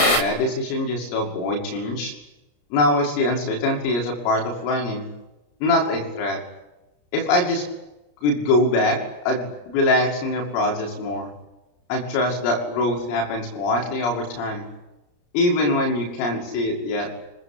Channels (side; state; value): right; late; 34 ms